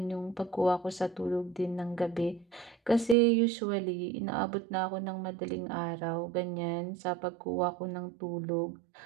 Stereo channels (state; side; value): drops out; left; at 3.2 s